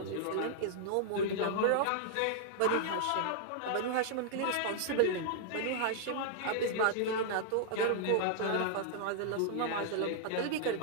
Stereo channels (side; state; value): both; different; correlation -0.01